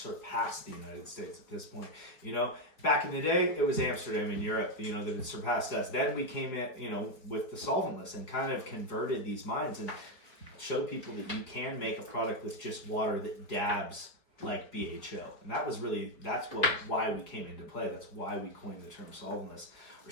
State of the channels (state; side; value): late; right; 4.6 ms